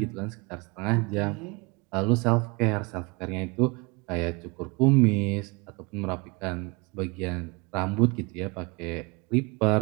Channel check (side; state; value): left; quieter; 27.9 dB